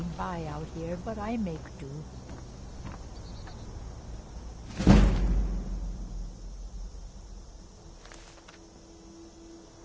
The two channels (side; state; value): both; identical; correlation 1.00